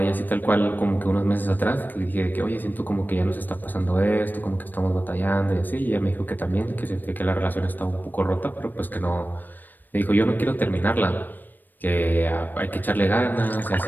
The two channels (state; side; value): late; right; 0.090 ms